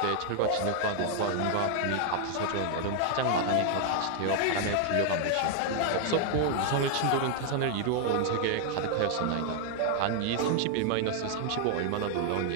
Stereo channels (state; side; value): different; both; correlation 0.00